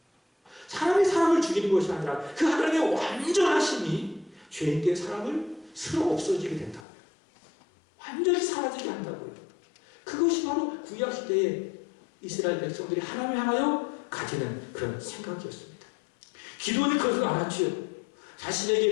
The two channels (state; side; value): drops out; right; at 6.9 s